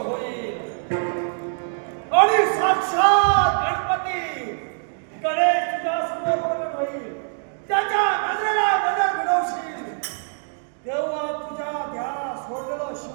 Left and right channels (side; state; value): left; silent; digital silence